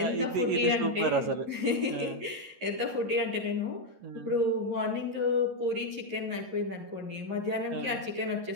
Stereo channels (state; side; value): late; left; 11 ms